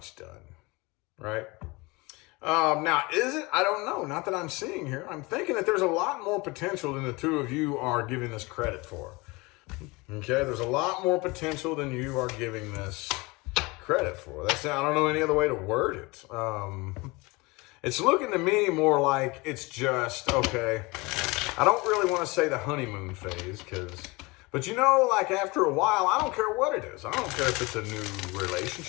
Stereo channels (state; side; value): quieter; right; 24.7 dB